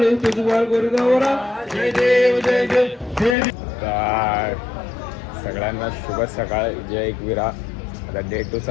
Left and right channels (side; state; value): right; drops out; at 3.4 s